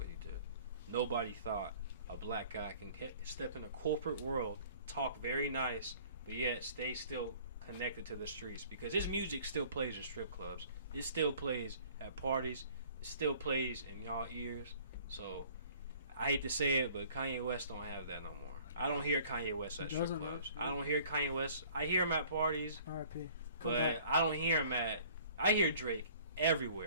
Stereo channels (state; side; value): inverted; both; correlation -0.53